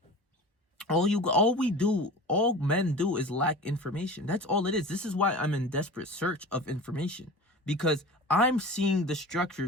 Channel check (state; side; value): normal; both; correlation 0.35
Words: all men do is lack information. That's all it is. This is why I'm in desperate search of information, because I'm seeing the structure